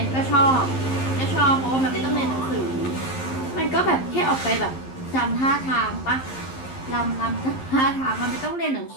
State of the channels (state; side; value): late; right; 11 ms